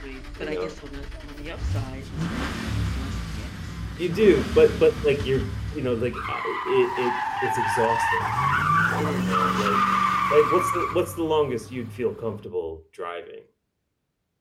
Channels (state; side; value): identical; both; correlation 1.00